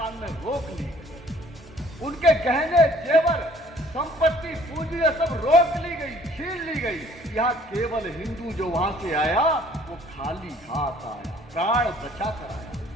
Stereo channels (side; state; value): both; normal; correlation 0.57